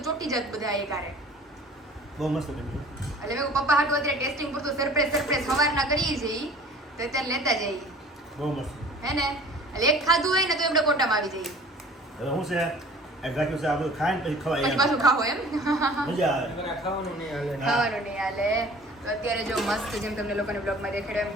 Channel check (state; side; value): normal; both; correlation 0.47